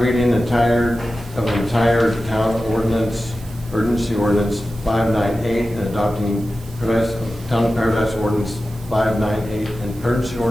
of the entire town ordinance, urgency ordinance 598, and adopting Town of Paradise ordinance 598, and urgency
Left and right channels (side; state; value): right; noise; hiss, 23 dB below the sound